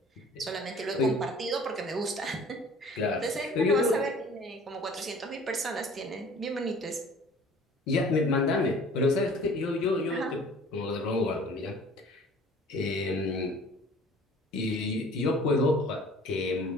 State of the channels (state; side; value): normal; both; correlation 0.49